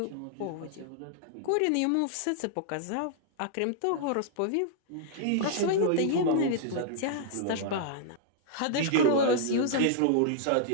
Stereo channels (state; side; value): different; both; correlation -0.01